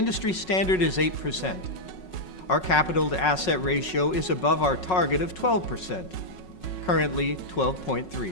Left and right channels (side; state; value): right; late; 5.4 ms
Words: standard is 8%. Our capital to asset ratio is above our target of 12%, currently